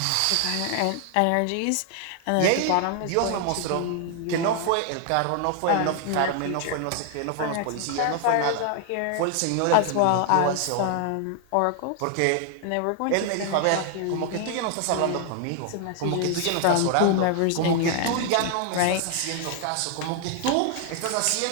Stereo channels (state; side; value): different; both; correlation 0.00